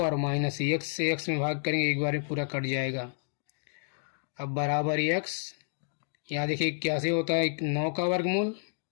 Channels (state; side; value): silent; right; digital silence